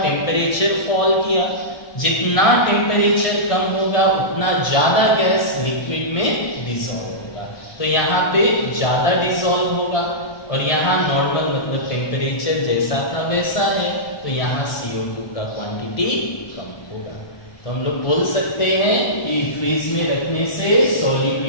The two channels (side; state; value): right; late; 1.2 ms